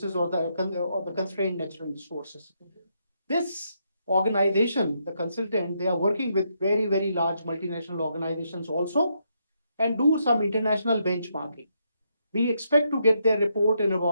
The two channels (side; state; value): both; inverted; correlation -0.78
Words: or the constrained natural resources. This organization, the consultant, they are working with very, very large multinational organizations also and do some international benchmarking. We expect to get their report in